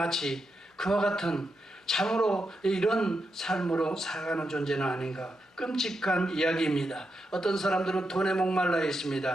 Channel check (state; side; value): normal; both; correlation 0.85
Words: 그와 같은 참으로 이런 삶으로 살아가는 존재는 아닌가 끔찍한 이야기입니다. 어떤 사람들은 돈에 목말라